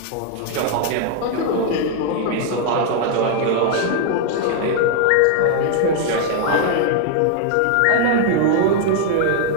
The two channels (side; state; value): both; different; correlation 0.00